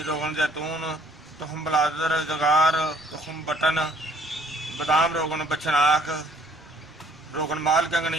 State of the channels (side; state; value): both; normal; correlation 0.59